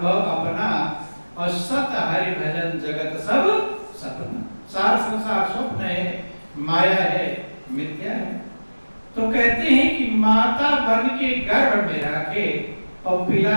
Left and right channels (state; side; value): inverted; both; correlation -1.00